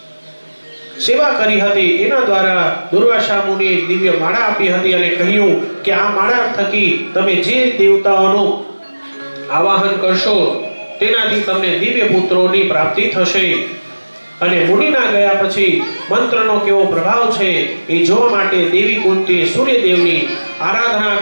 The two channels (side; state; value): both; inverted; correlation -1.00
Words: સેવા કરી હતી. એના દ્વારા દુર્વાસા મુનિએ દિવ્ય માળા આપી હતી અને કહ્યું કે આ માળા થકી તમે જે દેવતાઓનું આવાહન કરશો તેનાથી તમને દિવ્ય પુત્રોની પ્રાપ્તિ થશે. અને મુનિના ગયા પછી મંત્રનો કેવો પ્રભાવ છે એ જોવા માટે દેવી કુંતીએ સૂર્યદેવની આરાધના